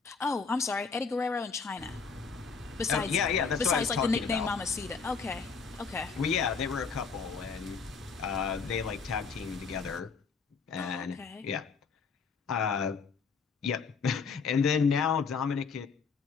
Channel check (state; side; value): quieter; right; 5.4 dB